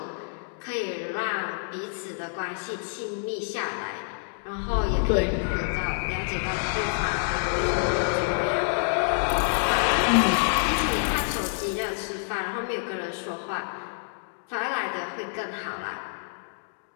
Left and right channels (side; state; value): right; silent; digital silence